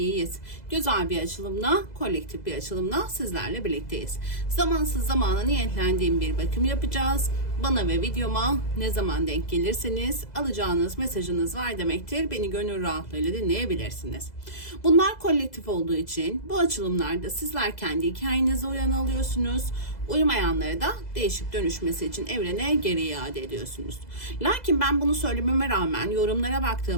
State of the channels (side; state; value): right; late; 2.0 ms